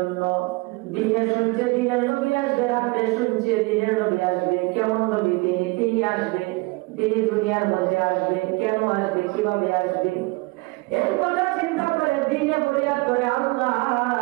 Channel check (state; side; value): quieter; left; 25.6 dB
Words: দিনে শুনছে দিনের নবী আসবে, রাতে শুনছে দিনের নবী আসবে। কেমন নবী তিনি আসবে, তিনি দুনিয়ার মধ্যে আসবে, কেন আসবে, কিভাবে আসবে, এর কথা চিন্তা করে দিনে ফরিয়াদ করে আল্লাহ